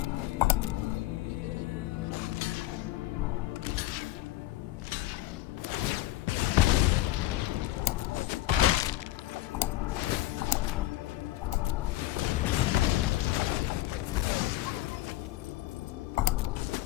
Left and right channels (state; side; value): quieter; right; 16.4 dB